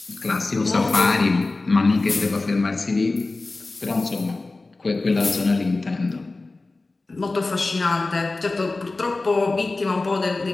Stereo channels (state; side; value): quieter; right; 3.4 dB